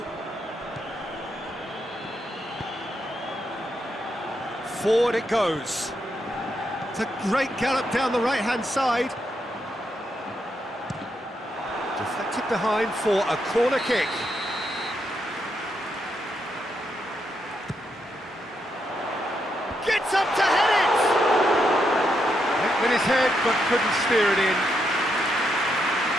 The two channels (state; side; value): normal; both; correlation 0.80